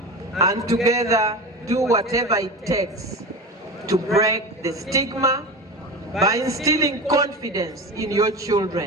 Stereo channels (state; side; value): normal; both; correlation 0.27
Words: and together do whatever it takes to break the stigma by instilling confidence in your